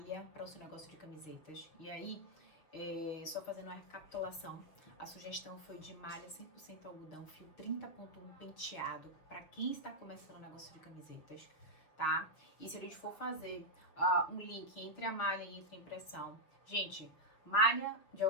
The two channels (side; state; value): right; late; 6.7 ms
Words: para o seu negócio de camisetas, e aí, só fazendo uma recapitulação, a sugestão foi de malha 100% algodão, fio 30.1 penteado, para quem está começando o negócio de camisetas, tá? E se a gente for fazer um link entre a malha e entre a impressão, gente, malha de